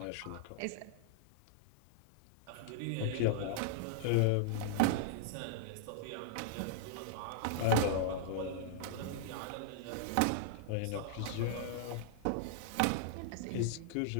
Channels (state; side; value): different; both; correlation -0.01